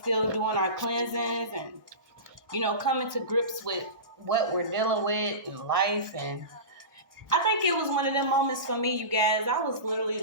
doing our cleansings and, coming to grips with what we're dealing with in life. And I think it was one of them moments for me, you guys. I was literally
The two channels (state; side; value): late; left; 1.2 ms